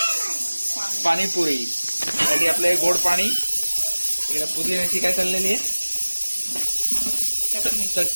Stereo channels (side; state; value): both; inverted; correlation -1.00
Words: पाणीपुरी साठी आपलं गोड पाणी, इकडे पुदिन्याची काय चाललेली आहे